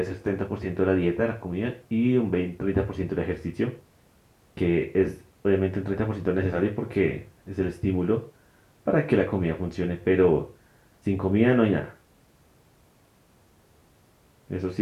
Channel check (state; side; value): identical; both; correlation 1.00